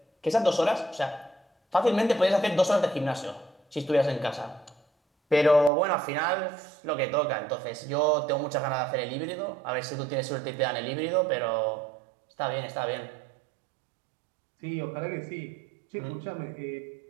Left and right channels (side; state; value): left; drops out; at 5.7 s